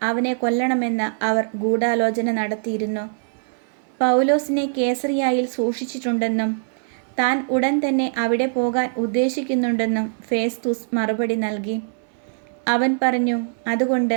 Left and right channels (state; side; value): silent; left; 64 dB below the other